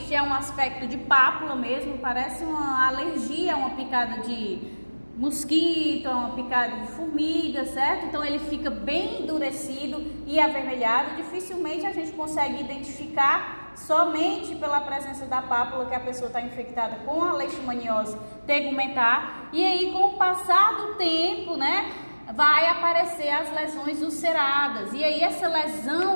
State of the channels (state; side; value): inverted; both; correlation -1.00